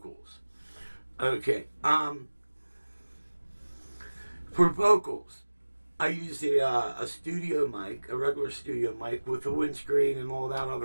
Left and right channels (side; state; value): both; inverted; correlation -1.00